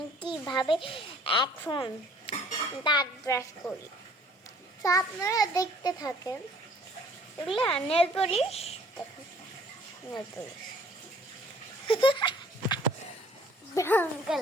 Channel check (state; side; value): normal; both; correlation 0.56